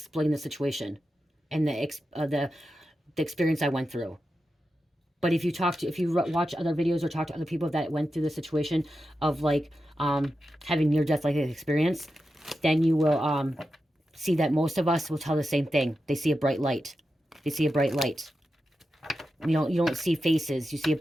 the situation and the experience I went through. But if you watch other videos or talk to other people that went through the situation of, like, having near-death like experience, then you will see that most of us will tell the same thing. They see a bright light. They see a bright light. You don't see faces. You see a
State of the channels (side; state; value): both; normal; correlation 0.90